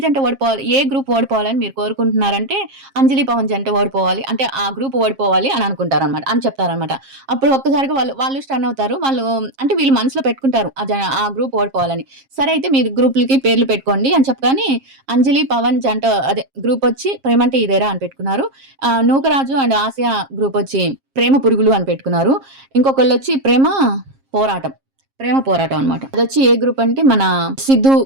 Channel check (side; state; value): left; late; 7.4 ms